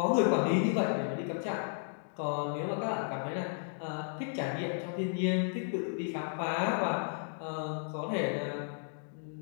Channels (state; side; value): silent; right; digital silence